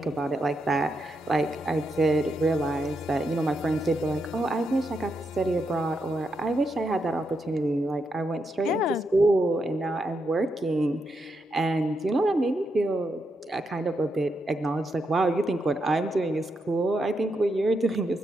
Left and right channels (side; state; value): both; normal; correlation 0.82